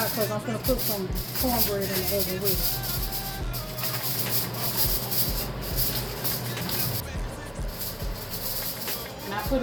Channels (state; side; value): identical; both; correlation 1.00